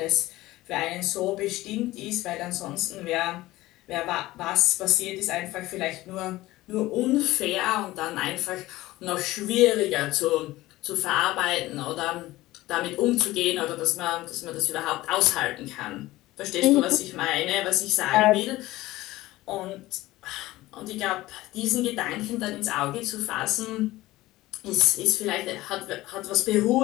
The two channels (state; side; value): quieter; right; 17.6 dB